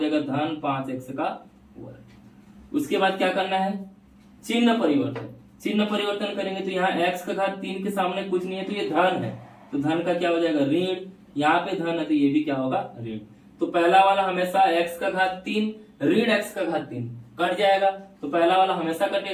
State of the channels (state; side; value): identical; both; correlation 1.00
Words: धन 5x का वर्ग। उसके बाद क्या करना है, चिन्ह परिवर्तन। चिन्ह परिवर्तन करेंगे तो यहाँ x का घात 3 के सामने कुछ नहीं है तो ये धन है, तो धन का क्या हो जाएगा, ऋण। यहाँ पे धन है तो ये भी क्या होगा, ऋण। तो पहला वाला हमेशा x का घात 3 ऋण x का घात 3 कट जाएगा, तो पहला वाला हमेशा